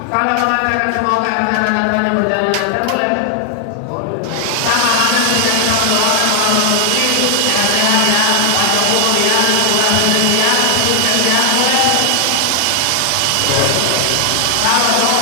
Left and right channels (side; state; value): both; different; correlation 0.00